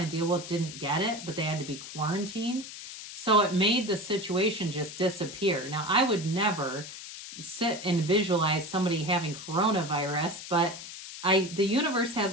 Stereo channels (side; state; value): left; noise; hiss, 11 dB below the sound